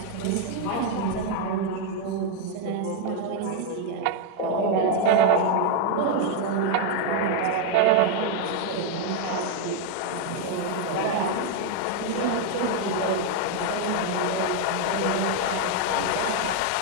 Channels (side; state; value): both; different; correlation 0.01